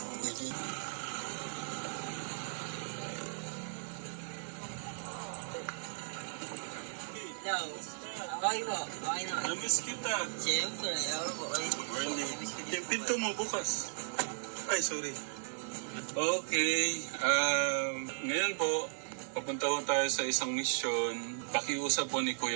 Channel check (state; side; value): silent; left; digital silence